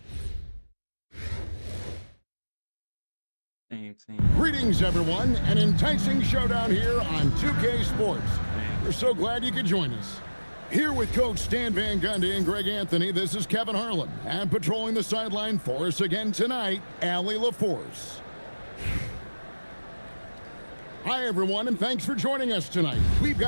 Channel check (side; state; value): both; inverted; correlation -1.00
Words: team. Greetings, everyone. An enticing showdown here on 2K Sports. We're so glad you could join us. Here with Coach Stan Van Gundy and Greg Anthony, this is Kevin Harlan. And patrolling the sideline for us again tonight, Allie LaForce. Hi, everyone, and thanks for joining us tonight. We've